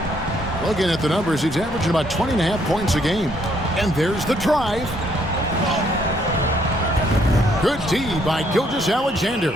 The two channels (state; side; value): normal; both; correlation 0.69